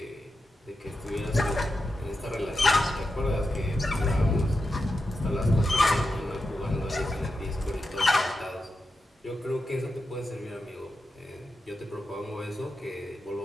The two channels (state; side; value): normal; both; correlation 0.89